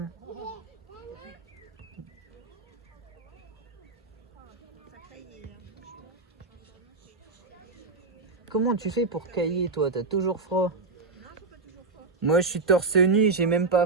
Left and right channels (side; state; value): left; quieter; 3.9 dB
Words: Comment tu fais pour cailler toi? T'as toujours froid. Moi, je suis torse nu, j'ai même